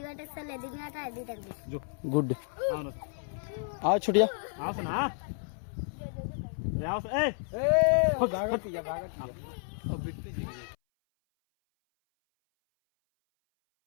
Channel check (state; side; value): silent; right; 57 dB below the other